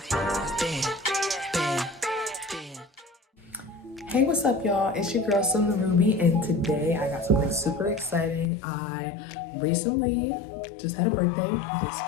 band, band, band. Hey, what's up, y'all? It's your girl, Summer Ruby, and today I got something super exciting. I recently just had a birthday this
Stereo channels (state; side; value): drops out; right; at 8.5 s